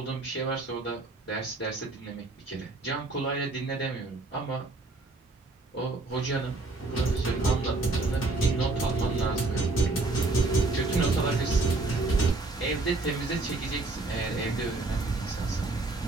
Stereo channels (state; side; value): quieter; left; 3.3 dB